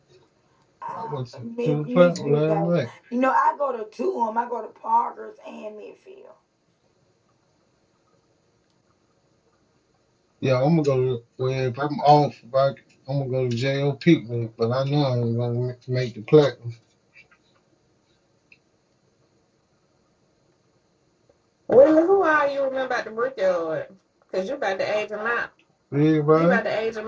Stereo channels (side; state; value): both; identical; correlation 1.00